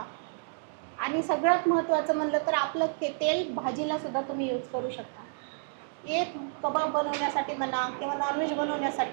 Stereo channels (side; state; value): left; silent; digital silence